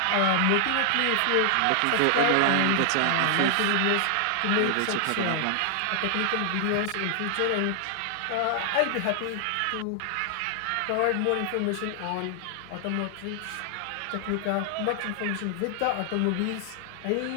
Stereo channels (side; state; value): both; different; correlation 0.00